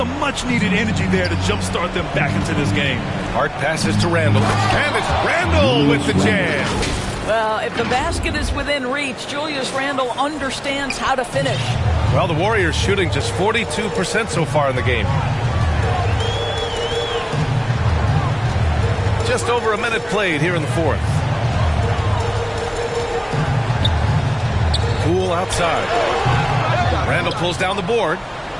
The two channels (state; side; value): identical; both; correlation 1.00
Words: much-needed energy there to jumpstart them back into this game. Hart passes to Randall. And it's Randall with the jam. Well, if the basket is within reach, Julius Randle understands how to finish. Well, the Warriors shooting just 42% so far in the game. Just over a minute played here in the 4th. Poole outside. Randall pulls down the board.